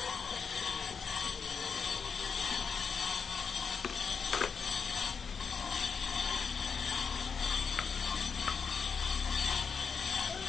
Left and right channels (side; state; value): right; quieter; 5.9 dB